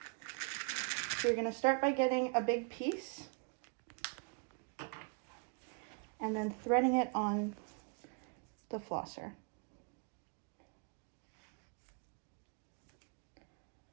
So you're going to start by getting a big piece and then threading it on the flosser.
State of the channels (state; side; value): quieter; left; 39.3 dB